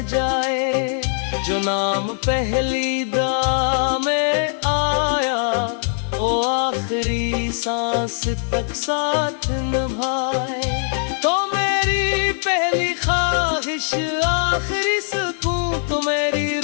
जाए। जो नाम पहली दा में आया वो आखिरी सांस तक साथ निभाए। तो मेरी पहली ख्वाहिश आखिरी सुकून, तो मेरी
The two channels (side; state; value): right; silent; digital silence